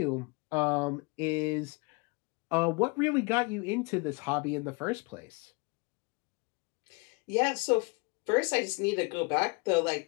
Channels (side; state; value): right; quieter; 29.5 dB